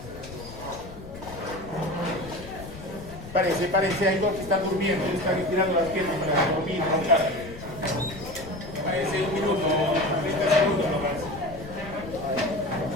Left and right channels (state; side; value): noise; left; rumble, 14 dB below the sound